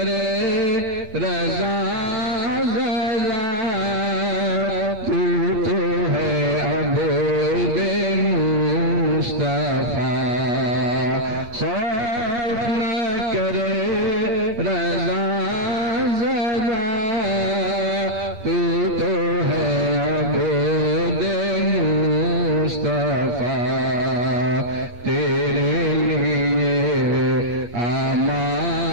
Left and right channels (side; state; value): left; late; 8.4 ms